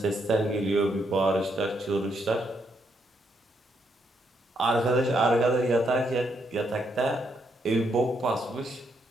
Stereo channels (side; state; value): both; normal; correlation 0.76